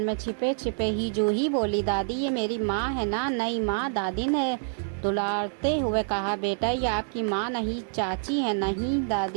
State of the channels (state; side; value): silent; left; digital silence